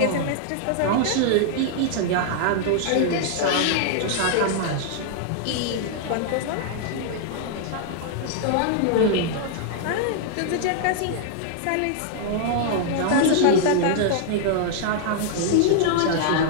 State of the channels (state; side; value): different; both; correlation -0.01